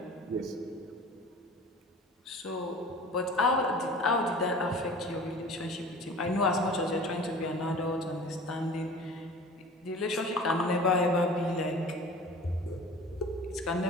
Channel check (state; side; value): normal; both; correlation 0.41